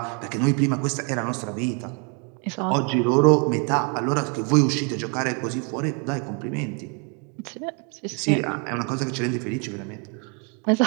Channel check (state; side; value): quieter; left; 36.2 dB